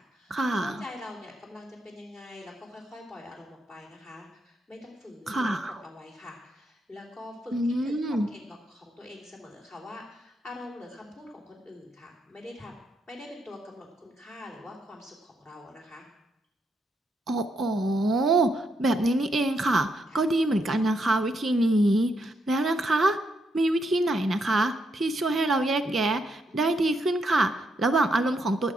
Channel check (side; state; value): both; normal; correlation 0.78